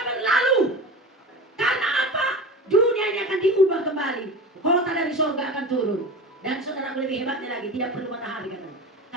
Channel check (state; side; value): normal; both; correlation 0.31